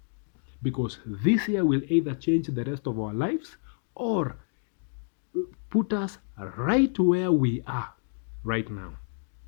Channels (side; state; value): right; silent; digital silence